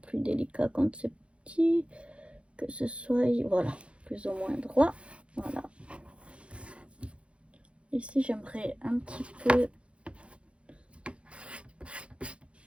délicat quand c'est petit, que ce soit, voilà, plus ou moins droit. Voilà. Ici, j'aimerais un petit peu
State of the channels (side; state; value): left; late; 0.060 ms